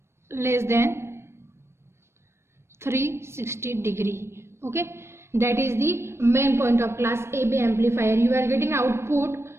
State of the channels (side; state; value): left; late; 0.13 ms